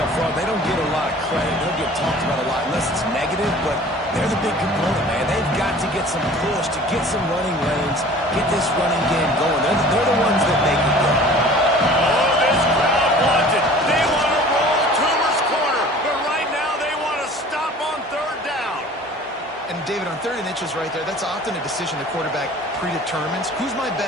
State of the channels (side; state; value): both; normal; correlation 0.46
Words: front, they don't get a lot of credit. They don't get talked about a lot unless it's negative, but they're the big component, man. They've got to get some push, to get some running lanes, get this running game going. They're the ones that make it go. Oh, this crowd wants it. They want to roll Toomer's corner, but right now they want to stop on 3rd down. And David, on 3rd and inches right there, that's often a decision the quarterback predetermines. Who's my